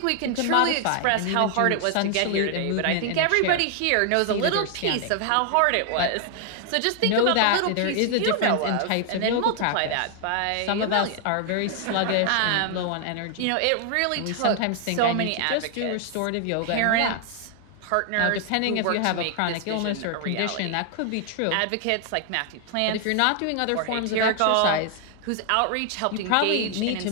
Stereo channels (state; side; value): different; both; correlation 0.00